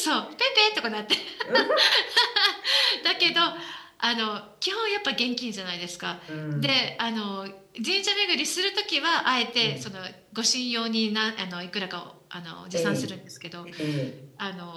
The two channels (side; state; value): both; identical; correlation 1.00